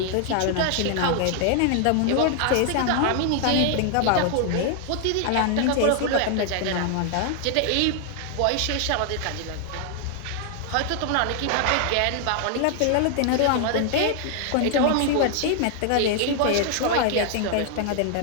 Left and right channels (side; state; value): both; different; correlation 0.00